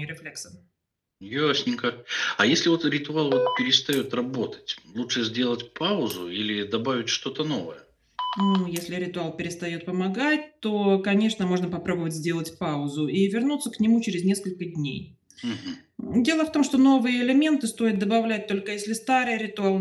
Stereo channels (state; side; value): identical; both; correlation 1.00